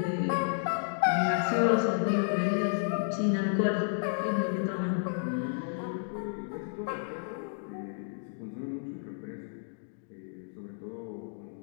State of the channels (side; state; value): right; silent; digital silence